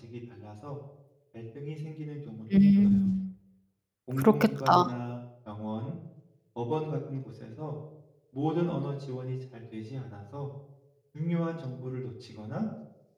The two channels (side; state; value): both; identical; correlation 1.00